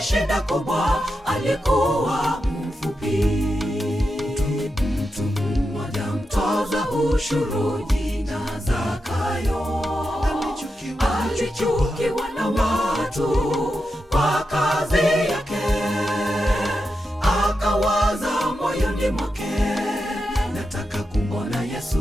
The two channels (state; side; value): normal; both; correlation 0.88